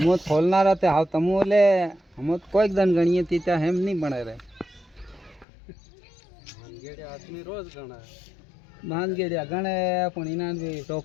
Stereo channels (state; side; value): drops out; right; at 5.5 s